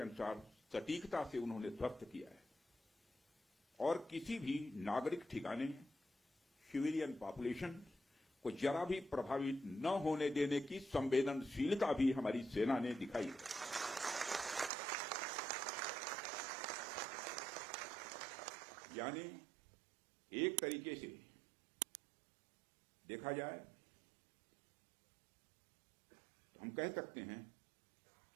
सटीकता से उन्होंने ध्वस्त किया है और किसी भी नागरिक ठिकाने, सिविलियन पॉपुलेशन को जरा भी प्रभावित न होने देने की संवेदनशीलता भी हमारी सेना ने दिखाई है। यानी एक तरीके से देखा जाए तो हम कह सकते हैं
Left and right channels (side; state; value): left; drops out; at 14.7 s